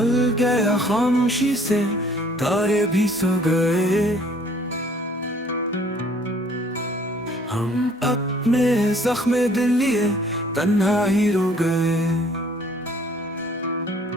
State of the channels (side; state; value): both; normal; correlation 0.58